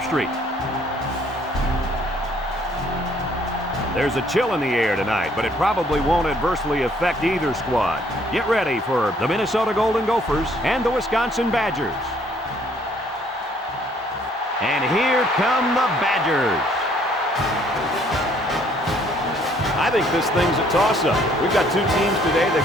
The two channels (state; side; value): normal; both; correlation 0.63